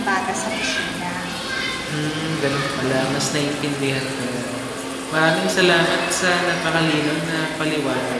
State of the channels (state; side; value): identical; both; correlation 1.00